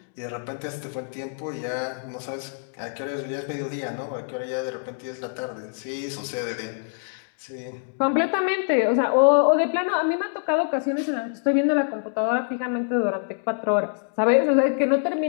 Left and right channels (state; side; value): silent; right; digital silence